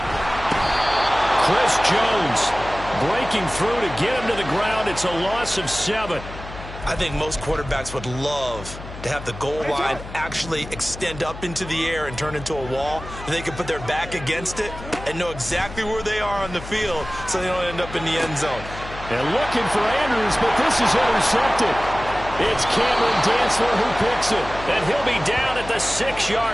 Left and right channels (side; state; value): left; noise; hum, 13 dB below the sound